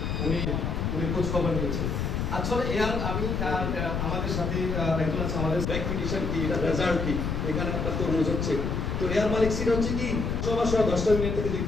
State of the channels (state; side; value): noise; left; rumble, 1 dB below the sound